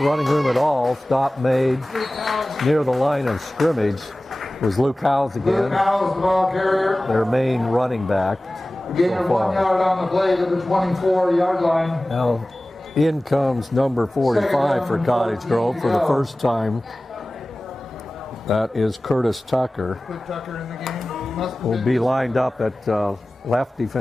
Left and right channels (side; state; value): both; normal; correlation 0.97